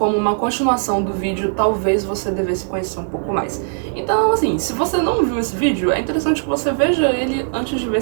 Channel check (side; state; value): left; silent; digital silence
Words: uma continuação do vídeo Talvez Você Devesse Conhecer um Pouco Mais. Então, assim, se você não viu esse vídeo, é interessante que você veja ele antes de ver